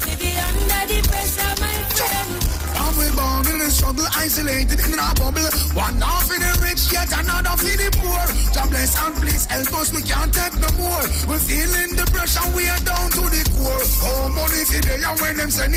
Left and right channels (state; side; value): identical; both; correlation 1.00